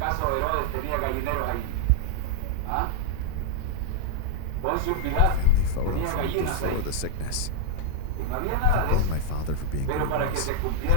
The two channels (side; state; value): both; different; correlation 0.00